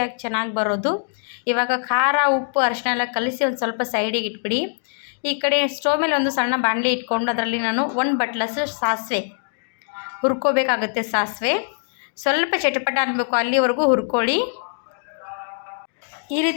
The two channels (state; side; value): silent; right; digital silence